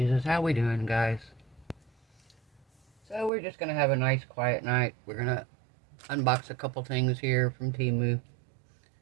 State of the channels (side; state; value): left; drops out; at 3.3 s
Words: How we doing, guys? So we're just gonna have a nice quiet night. We're gonna unbox a couple things here from Temu.